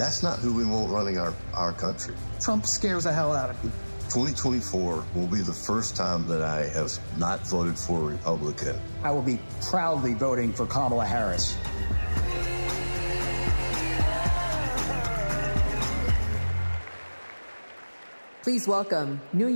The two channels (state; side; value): inverted; both; correlation -1.00